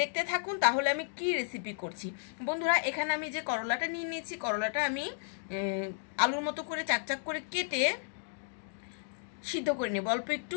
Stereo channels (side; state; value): right; silent; digital silence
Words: থাকুন তাহলে আমি কি রেসিপি করছি। বন্ধুরা, এখানে আমি যে করলাটা নিয়ে নিয়েছি, করলাটা আমি আলুর মতো করে চাকচাক করে কেটে সিদ্ধ করে নেব অল্প একটু